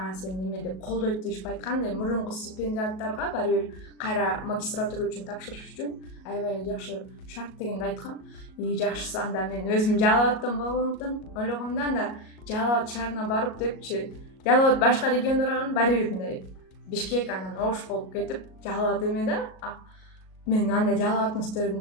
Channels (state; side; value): late; right; 37 ms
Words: сени неме деп колдойт дешип айткандай, мурунку стипендиаттарга баары бир кайра магистратура үчүн тапшырыш үчүн аябай эле жакшы шарт дегенди айткам. Жакшысы анда мен өзүм Жалал абадтан болгондуктан ойлогом да, анда Жалал абад шаарына барып депчи, Жалал абад башка региондорго баары бир мындай Бишкек анан Ош болуп кетип, Жалал абад эме да, мен андай Жалал абадтын